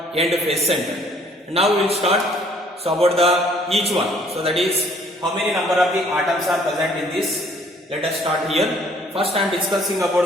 End face centered. And now we will start. So about the each one. So that is how many number of the atoms are present in this. Let us start here. First I am discussing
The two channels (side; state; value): both; normal; correlation 0.60